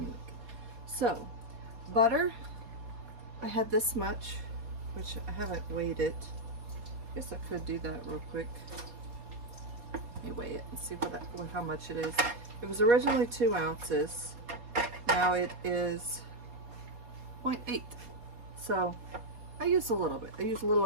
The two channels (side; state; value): left; late; 4.2 ms